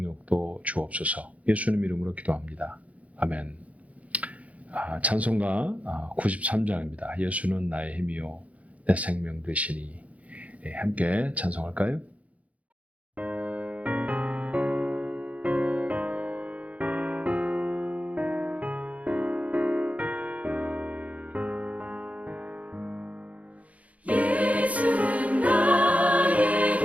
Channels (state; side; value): late; left; 0.067 ms